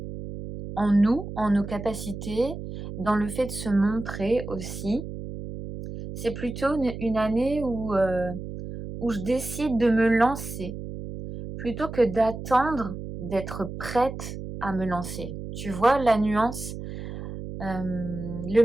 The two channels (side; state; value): right; noise; hum, 9 dB below the sound